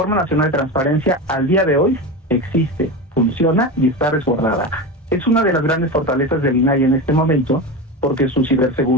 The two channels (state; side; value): normal; both; correlation 0.22